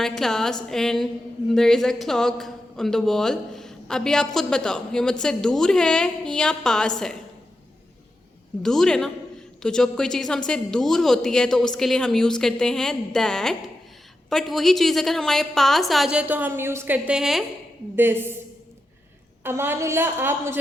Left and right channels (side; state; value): both; normal; correlation 0.89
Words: class and there is a clock on the wall. अभी आप खुद बताओ, ये मुझसे दूर है या पास है? दूर है ना। तो जब कोई चीज़ हमसे दूर होती है तो उसके लिए हम यूज़ करते हैं दैट, बट वही चीज़ अगर हमारे पास आ जाए तो हम यूज़ करते हैं दिस। अमानुल्लाह, आप मुझे